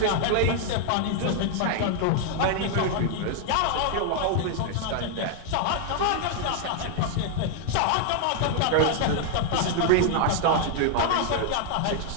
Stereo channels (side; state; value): both; different; correlation 0.00